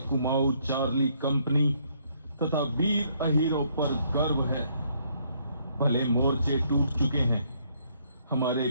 कुमाऊं चार्ली कंपनी तथा वीर अहीरों पर गर्व है। भले मोर्चे टूट चुके हैं, हमारे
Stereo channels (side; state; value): both; inverted; correlation -0.69